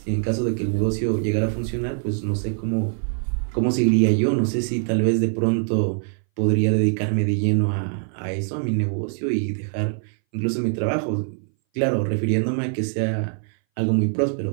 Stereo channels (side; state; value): left; silent; 60 dB below the other